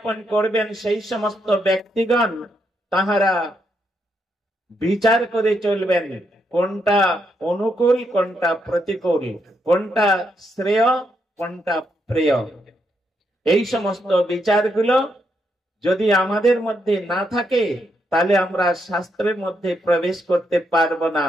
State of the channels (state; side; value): normal; both; correlation 0.79